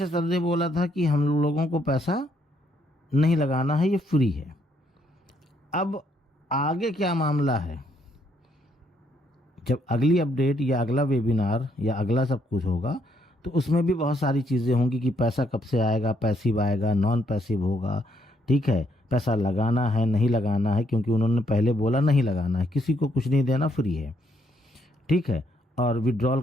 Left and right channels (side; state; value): both; normal; correlation 0.72